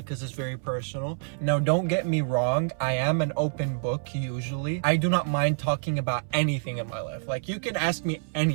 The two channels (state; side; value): silent; left; 60 dB below the other